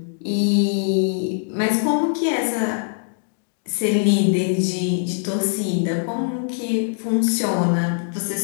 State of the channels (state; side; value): silent; right; digital silence